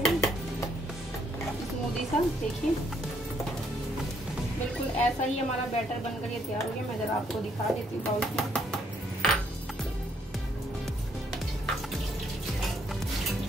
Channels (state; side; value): normal; both; correlation 0.70